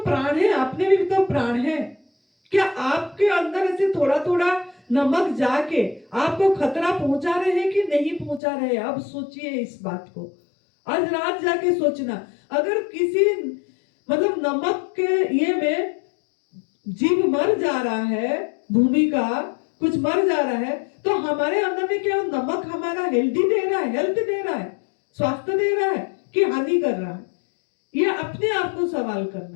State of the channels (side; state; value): right; drops out; at 8.4 s